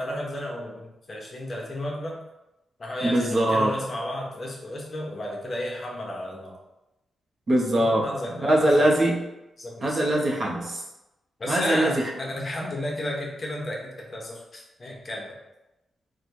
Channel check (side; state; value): both; normal; correlation 0.88